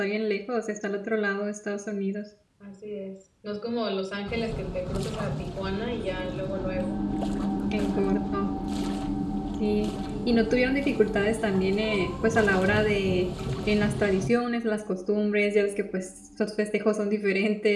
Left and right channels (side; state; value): both; identical; correlation 1.00